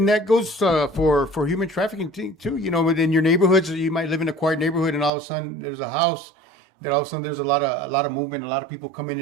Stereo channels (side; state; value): left; drops out; at 5.1 s